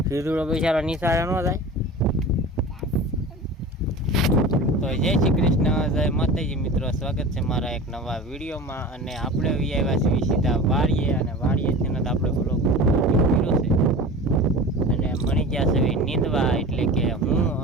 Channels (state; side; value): normal; both; correlation 0.35